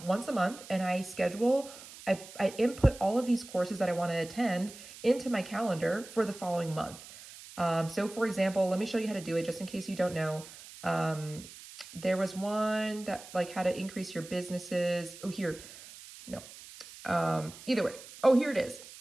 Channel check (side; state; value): right; noise; hiss, 17 dB below the sound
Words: a month, and I input all of these courses that I want to attend into my calendar for the following month. So for example, let me show you how to do it just in case you don't know. There was one that like how to increase your businesses. Oh, here. No. Either way. Oh, here it is.